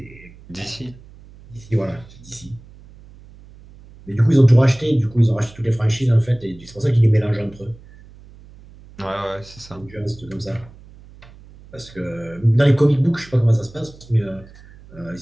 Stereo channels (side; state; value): right; noise; hum, 22 dB below the sound